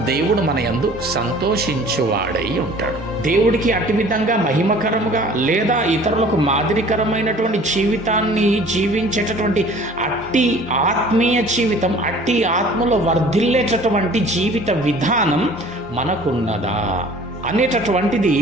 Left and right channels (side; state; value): both; normal; correlation 0.49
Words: దేవుడు మన యందు సంతోషించువాడై ఉంటాడు. దేవుడికి అట్టి విధంగా మహిమకరముగా లేదా ఇతరులకు మాదిరికరమైనటువంటి జీవితాన్ని జీవించేటటువంటి అట్టి ఆత్మీయ జీవితం, అట్టి ఆత్మలో వర్ధిల్లేటటువంటి జీవిత విధానం మనకున్నదా అనేటటువంటిది